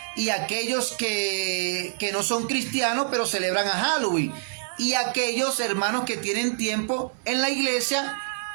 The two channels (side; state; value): left; silent; 61 dB below the other